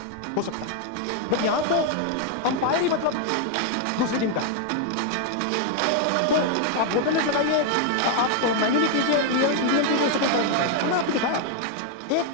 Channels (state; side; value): different; both; correlation 0.00